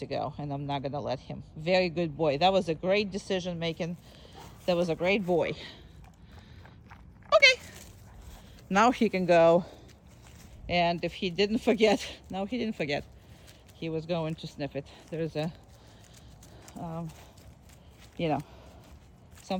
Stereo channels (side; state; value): both; identical; correlation 1.00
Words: go, and I'm not gonna let him. Very good boy. That was a great decision making. That was a great boy. Okay, now he can go. And if he didn't forget, no, he didn't forget. He was going to sniff it. There's a, you know,